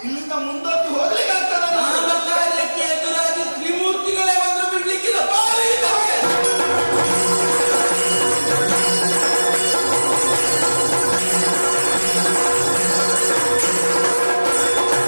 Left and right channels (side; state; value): both; inverted; correlation -1.00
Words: ಇಲ್ಲಿಂದ ಮುಂದಕ್ಕೆ ಹೋಗಲಿ